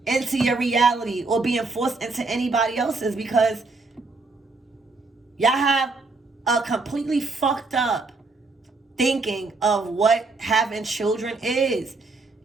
into your reality or being forced into anybody else's, because y'all have a completely fucked up thinking of what having children is.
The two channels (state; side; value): quieter; left; 3.7 dB